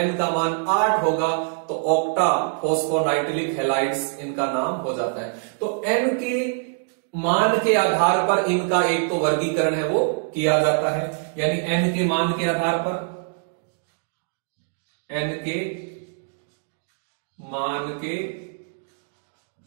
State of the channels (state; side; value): silent; left; 63 dB below the other